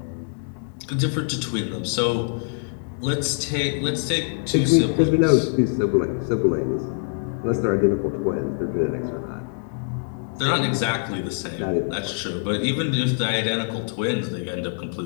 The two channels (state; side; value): silent; right; digital silence